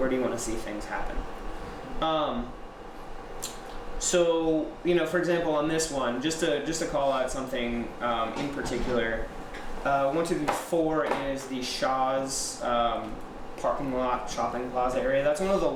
do you want to see things happen? So, for example, on this one, just to call out something in particular, 1, 2, 3, 4 is the Shaw's parking lot shopping plaza area. That's one of the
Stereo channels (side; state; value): both; identical; correlation 1.00